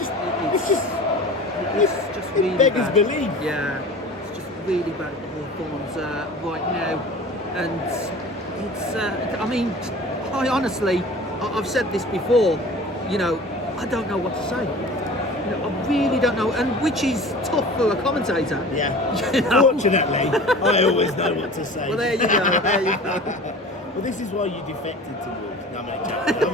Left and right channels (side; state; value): both; normal; correlation 0.40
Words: really beggars bad. belief. Yeah, it's just really bad at the Hawthorns right now, and it's. I mean, I honestly, I've said this before, you know, I don't know what to say. You know, I really don't know, and which is tough for a commentator. Yeah. You know? Fortunately, I always know what to say. Well, there you go. There you go. Well, this is why you defected to Wolves. No,